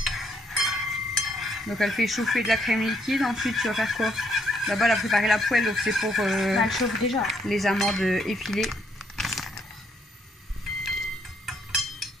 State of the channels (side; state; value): both; normal; correlation 0.71